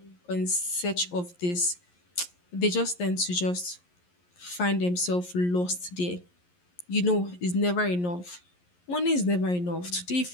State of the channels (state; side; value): late; right; 11 ms